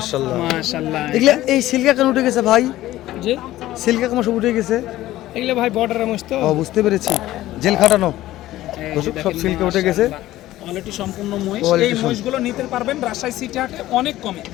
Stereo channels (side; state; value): right; quieter; 15.4 dB